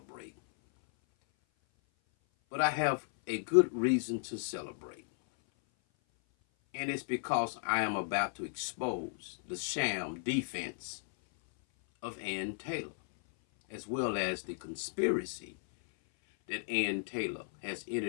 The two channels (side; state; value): right; silent; 55 dB below the other